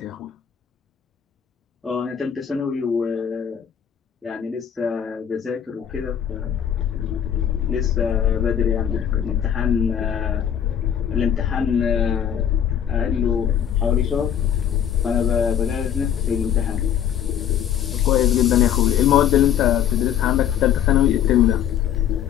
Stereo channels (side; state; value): right; quieter; 9.3 dB